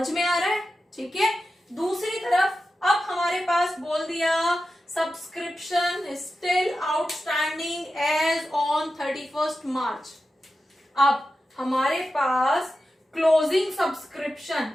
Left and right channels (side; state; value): both; normal; correlation 0.92